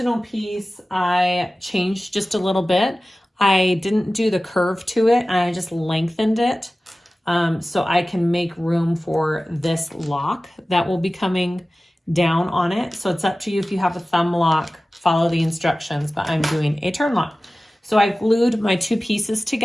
piece, I changed just a little bit. I didn't do the curve to it. I just lengthened it so I can make room for this lock that will be coming down on it. So it's up to you if you have a thumb lock, follow the instructions, but I'm doing a turn lock. So I glued my two pieces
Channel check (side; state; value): both; normal; correlation 0.96